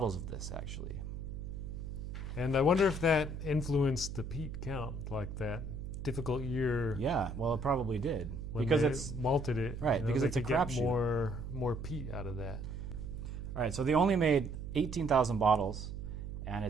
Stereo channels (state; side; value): noise; right; hum, 7 dB below the sound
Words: of this actually. And I wonder if that influenced the peat count, like that difficult year. Yeah, well, it probably did because it's malted it, right? Because it's a crapshoot. More peat out of that. All right, so they only made 18,000 bottles, and